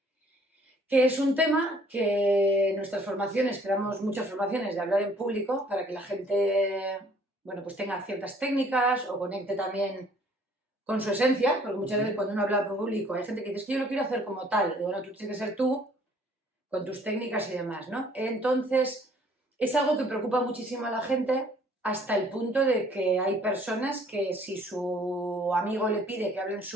que es un tema que en nuestras formaciones, creamos muchas formaciones de hablar en público para que la gente, bueno, pues tenga ciertas técnicas o conecte también con su esencia, porque muchas veces cuando uno habla en público hay gente que dice, es que yo lo quiero hacer como tal, y bueno, tú tienes que ser tú con tus técnicas y demás, ¿no? Entonces, es algo que preocupa muchísimo a la gente hasta el punto de que hay personas que si su amigo le pide que hable en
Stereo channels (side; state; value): both; normal; correlation 0.59